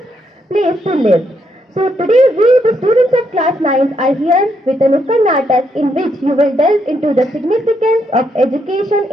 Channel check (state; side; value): normal; both; correlation 0.77